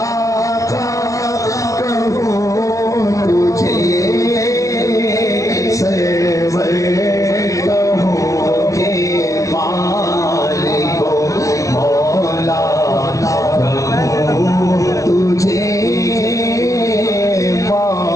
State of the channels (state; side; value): late; right; 0.16 ms